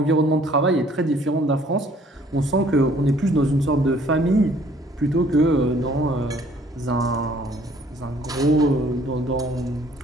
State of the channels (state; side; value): normal; both; correlation 0.59